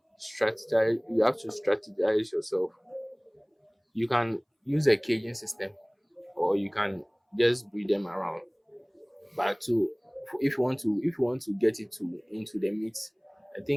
strategize. You have to strategize yourself. You can use a caging system, or you can just breed them around. But to if you want to get it to into the meat, I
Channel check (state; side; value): identical; both; correlation 1.00